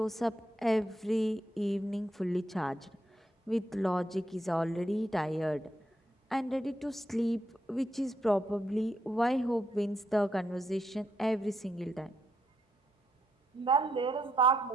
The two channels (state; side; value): normal; both; correlation 0.79